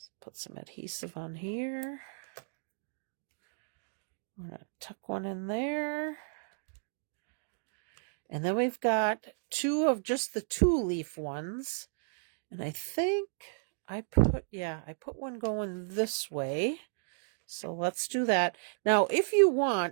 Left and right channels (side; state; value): left; silent; digital silence